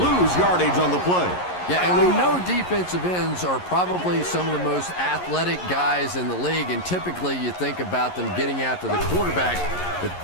yardage on the play. Yeah, and we know defensive ends are probably some of the most athletic guys in the league, and typically you think about them getting after the quarterback, but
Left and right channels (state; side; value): late; right; 11 ms